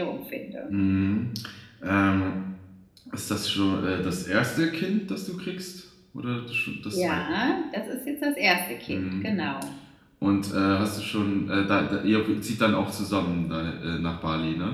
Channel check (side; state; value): both; identical; correlation 1.00